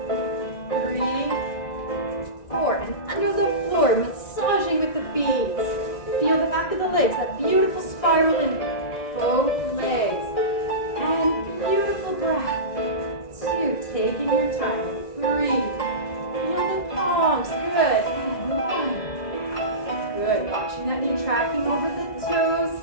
3, 4. And under the floor, massaging with the feet. Feel the back of the legs, that beautiful spiral in both legs. And beautiful breath. 2, taking your time. 3, feel the palms. Good. And 1. Good. Watching that knee tracking over the toes.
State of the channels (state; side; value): late; right; 1.9 ms